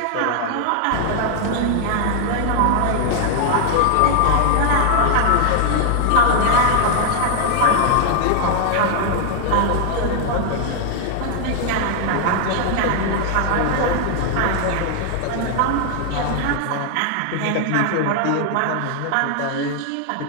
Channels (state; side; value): different; both; correlation 0.00